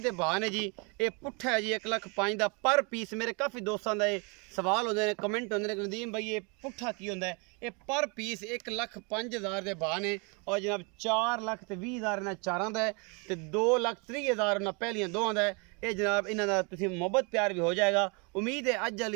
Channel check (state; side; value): quieter; left; 32.3 dB